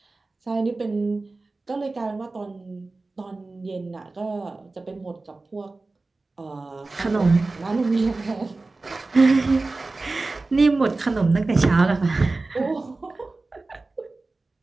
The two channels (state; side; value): quieter; left; 3.4 dB